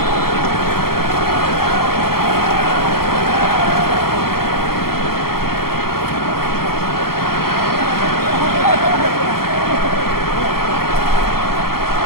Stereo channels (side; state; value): right; late; 0.94 ms